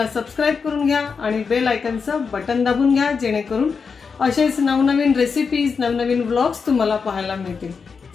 सबस्क्राइब करून घ्या आणि बेल आयकॉनचं बटन दाबून घ्या, जेणेकरून असेच नवनवीन रेसिपीज नवनवीन व्लॉग्स तुम्हाला पाहायला मिळतील।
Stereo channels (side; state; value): right; quieter; 5.5 dB